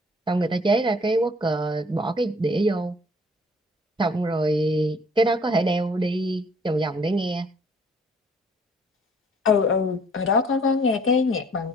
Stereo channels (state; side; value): normal; both; correlation 0.58